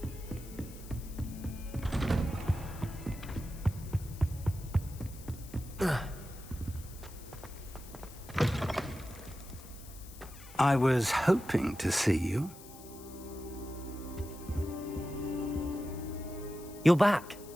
I was hoping to see you. You're back.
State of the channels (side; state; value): left; noise; hiss, 18 dB below the sound